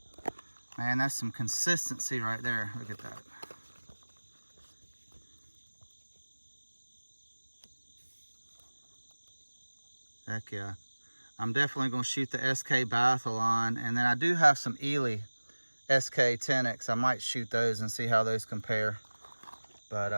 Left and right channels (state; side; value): inverted; both; correlation -1.00